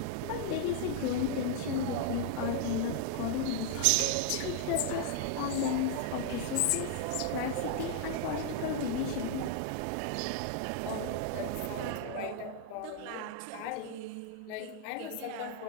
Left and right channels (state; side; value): different; both; correlation 0.00